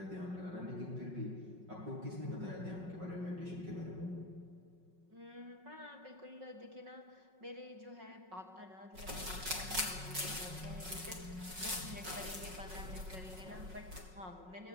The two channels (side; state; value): left; late; 5.4 ms